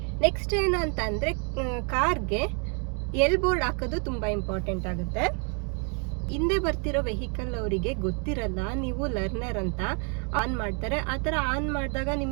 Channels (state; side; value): quieter; left; 39.0 dB